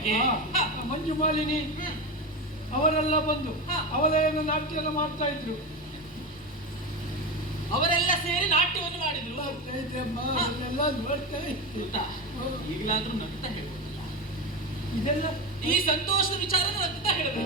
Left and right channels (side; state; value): both; normal; correlation 0.18